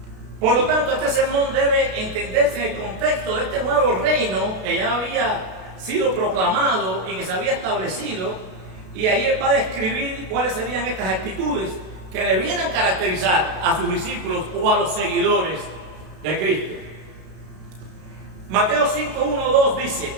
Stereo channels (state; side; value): late; left; 32 ms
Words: Por lo tanto, este sermón debe entenderse en el contexto de este nuevo reino que ya había sido proclamado y que se había establecido, y ahí él va a describir cuáles serían estas actitudes que debieran caracterizar a sus discípulos o a los seguidores de Cristo. Mateo 5, 1, 2 dice: